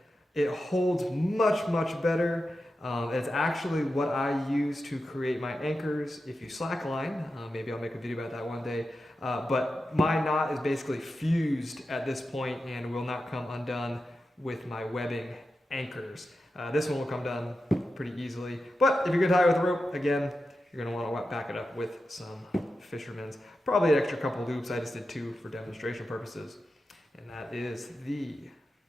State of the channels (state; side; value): normal; both; correlation 0.90